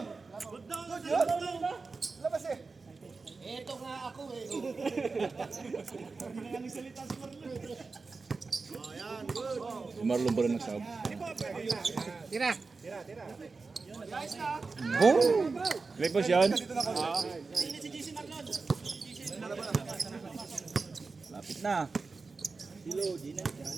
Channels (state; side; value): quieter; left; 4.2 dB